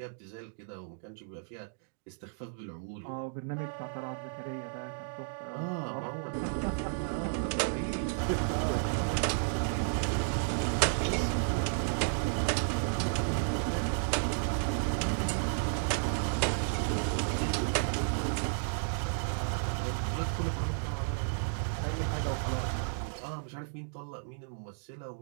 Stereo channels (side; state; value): left; silent; digital silence